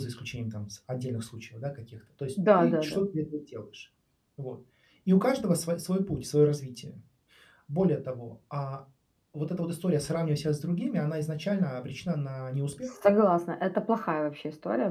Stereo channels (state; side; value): identical; both; correlation 1.00